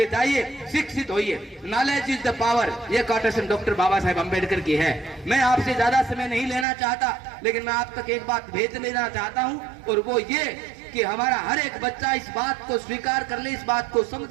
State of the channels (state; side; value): drops out; left; at 6.7 s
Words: जाइए, शिक्षित होइए, नॉलेज इज द पावर। ये कोटेशन डॉक्टर बाबा साहेब अम्बेडकर की है। मैं आपसे ज्यादा समय नहीं लेना चाहता, लेकिन मैं आप तक एक बात भेज लेना चाहता हूं, और वो ये कि हमारा हर एक बच्चा इस बात को स्वीकार कर ले, इस बात को